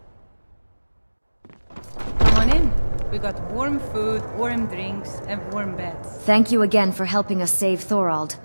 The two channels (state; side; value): inverted; both; correlation -1.00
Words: Come on in. We got warm food, warm drinks, and warm beds. Thank you again for helping us save Thorald.